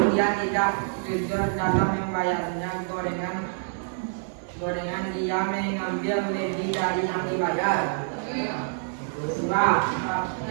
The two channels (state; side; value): silent; left; 61 dB below the other